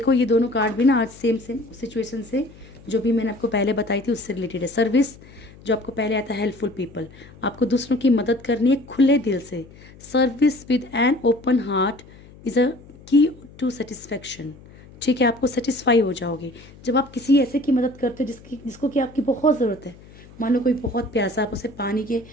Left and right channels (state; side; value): noise; left; hum, 22 dB below the sound